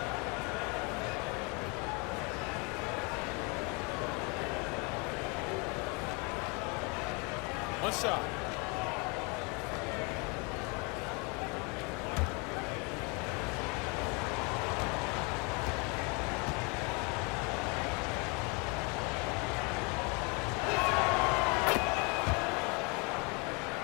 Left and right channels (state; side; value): quieter; right; 30.9 dB